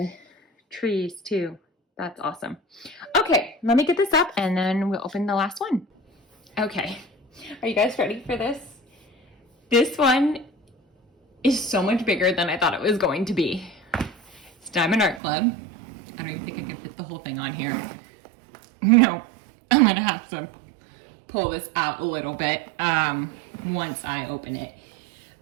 trees too. That's awesome. Okay, let me get this up and then we'll open the last one. Okay, are you guys ready for this? This one is so much bigger than I thought it was going to be. It's Diamond Art Club. I don't even think I can fit the whole thing on here. No, I'm gonna have to pull this out a little bit once I open it.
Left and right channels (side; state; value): left; drops out; at 15.2 s